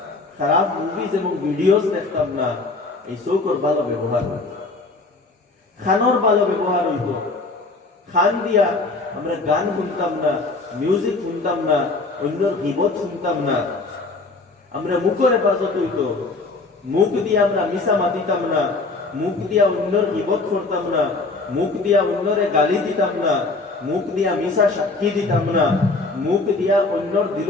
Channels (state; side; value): quieter; right; 3.5 dB